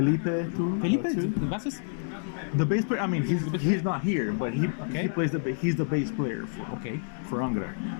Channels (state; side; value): silent; right; digital silence